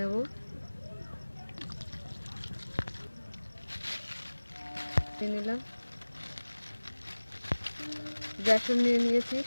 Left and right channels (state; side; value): inverted; both; correlation -1.00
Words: নিলাম বেসন নিয়ে নিয়েছি।